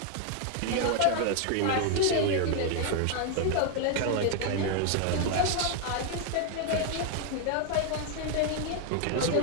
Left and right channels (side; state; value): both; different; correlation 0.00